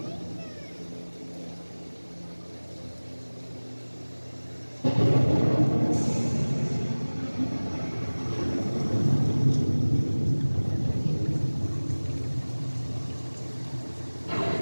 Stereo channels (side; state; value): both; inverted; correlation -1.00